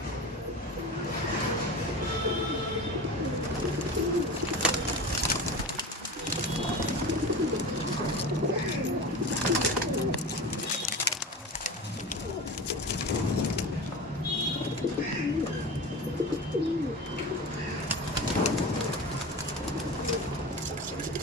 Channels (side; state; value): both; normal; correlation 0.29